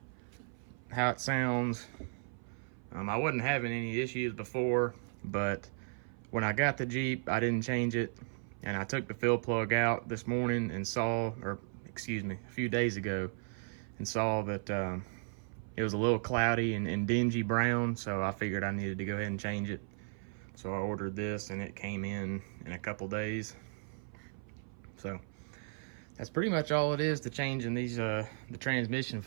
how it sounds. I wasn't having any issues before, but when I got the Jeep, I didn't change it, and I took the fill plug out this morning and saw, or excuse me, a few days ago, and saw that it was a little cloudy and dingy brown, so I figured I needed to go ahead and change it. So I ordered this, and it came in a couple days. So that's pretty much all it is to changing these the transmission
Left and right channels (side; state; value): left; silent; 54 dB below the other